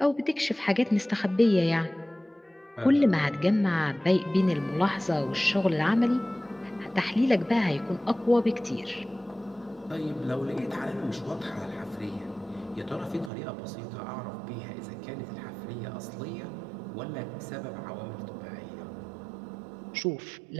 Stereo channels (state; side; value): drops out; left; at 13.3 s